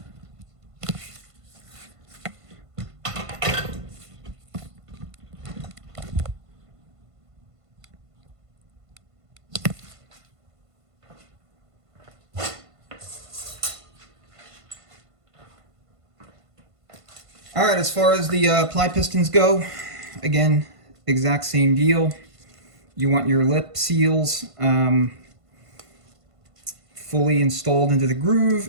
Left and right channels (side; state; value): left; late; 1.5 ms